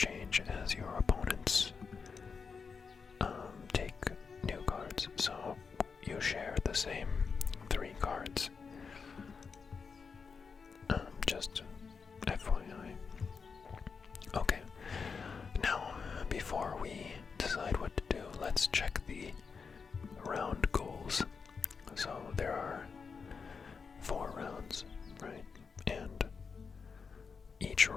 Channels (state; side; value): quieter; right; 5.4 dB